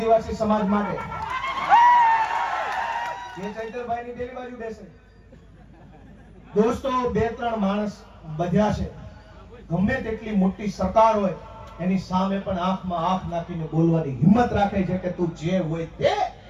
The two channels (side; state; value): both; identical; correlation 1.00